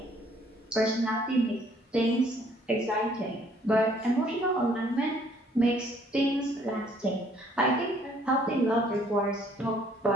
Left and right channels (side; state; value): both; normal; correlation 0.62